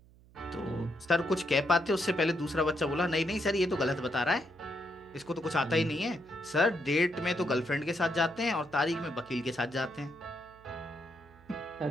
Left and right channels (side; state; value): right; noise; hum, 26 dB below the sound